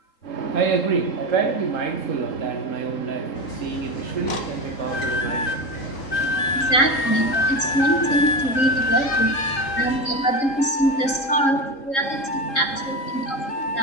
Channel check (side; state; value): right; late; 3.7 ms